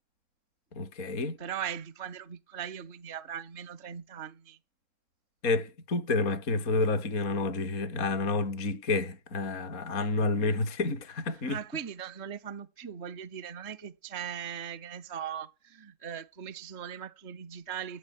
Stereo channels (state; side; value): late; right; 3.7 ms